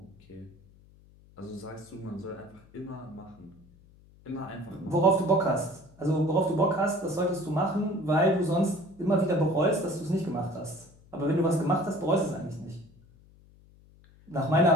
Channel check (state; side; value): noise; left; hum, 26 dB below the sound